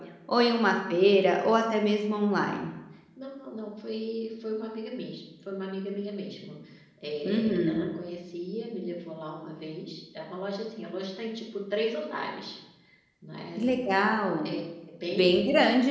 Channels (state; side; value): identical; both; correlation 1.00